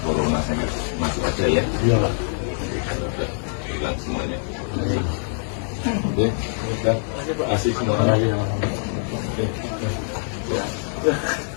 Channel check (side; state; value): right; silent; digital silence